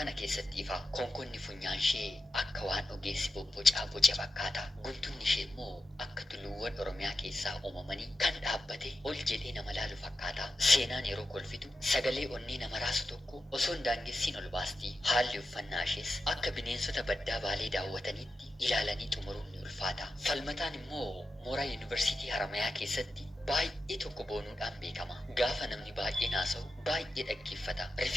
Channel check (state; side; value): normal; both; correlation 0.90